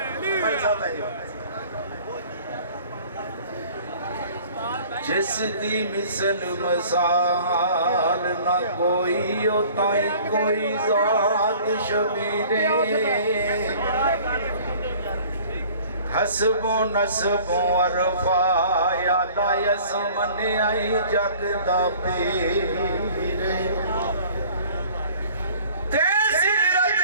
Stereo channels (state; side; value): inverted; both; correlation -0.50